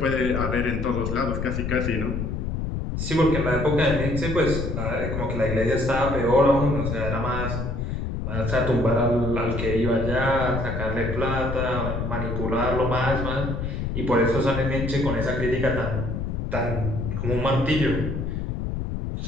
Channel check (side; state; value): left; noise; rumble, 3 dB below the sound